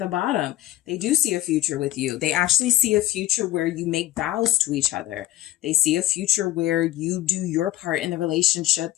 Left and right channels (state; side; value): quieter; right; 15.0 dB